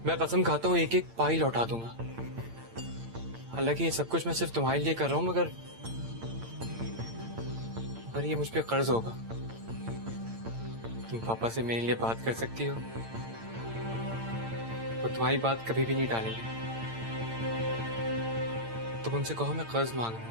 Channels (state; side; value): late; left; 8.8 ms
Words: मैं कसम खाता हूँ एक एक पाई लौटा दूंगा। हालांकि ये सब कुछ मैं सिर्फ तुम्हारे लिए कर रहा हूँ, मगर ये मुझ पे कर्ज होगा। तुम पापा से मेरे लिए बात कर सकती हो, वो तुम्हारी बात कभी भी नहीं टालेंगे। तुम उनसे कहो मैं कर्ज मांग रहा